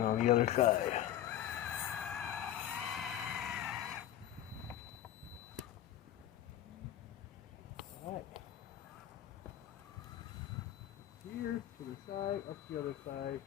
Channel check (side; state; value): right; quieter; 11.8 dB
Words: on the other side. Alright. Here to the side, up the other side.